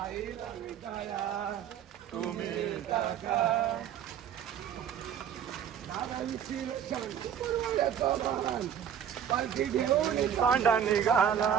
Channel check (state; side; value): quieter; left; 8.9 dB